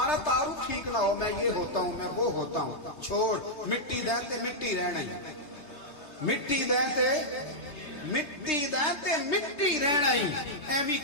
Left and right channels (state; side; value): late; right; 3.3 ms